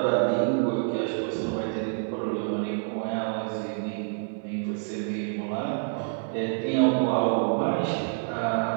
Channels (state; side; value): silent; left; digital silence